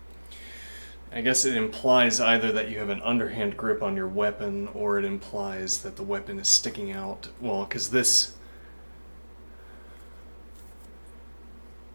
I guess it implies either that you have an underhand grip on your weapon, or it implies that the weapon is sticking out. Well, because this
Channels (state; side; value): inverted; both; correlation -1.00